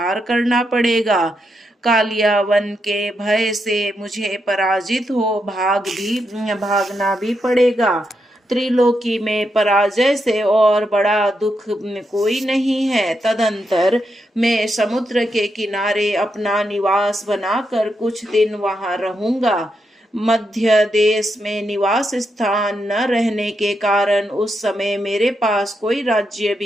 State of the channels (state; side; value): normal; both; correlation 0.83